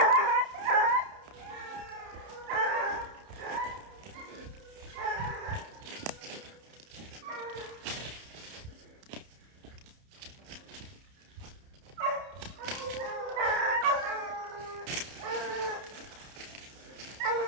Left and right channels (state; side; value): late; left; 30 ms